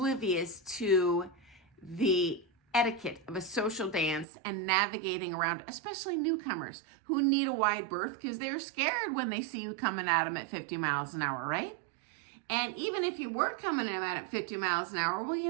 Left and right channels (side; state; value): left; drops out; at 4.2 s